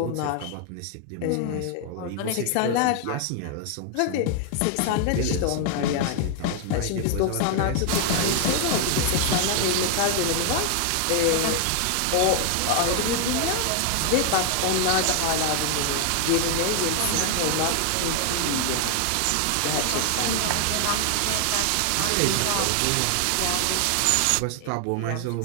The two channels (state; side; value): different; both; correlation 0.00